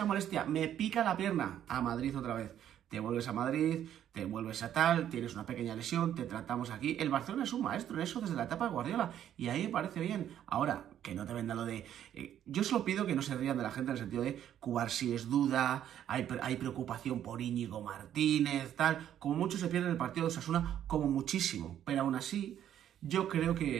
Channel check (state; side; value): quieter; left; 10.6 dB